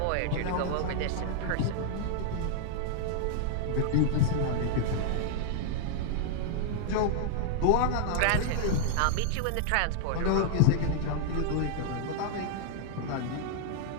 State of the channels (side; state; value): both; different; correlation -0.01